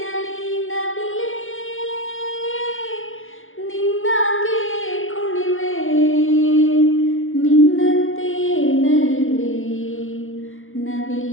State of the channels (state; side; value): late; right; 0.59 ms